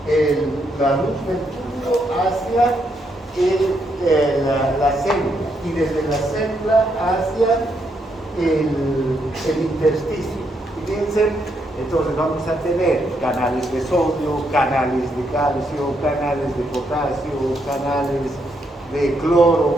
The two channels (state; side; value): normal; both; correlation 0.77